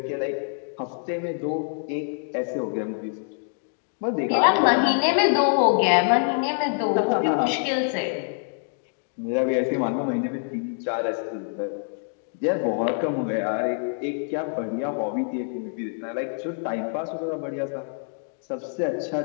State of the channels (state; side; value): silent; right; 61 dB below the other